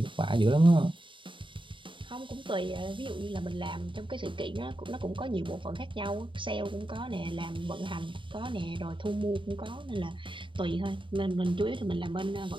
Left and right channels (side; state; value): left; late; 0.24 ms